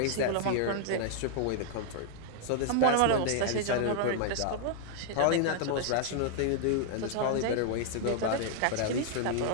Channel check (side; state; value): both; different; correlation -0.01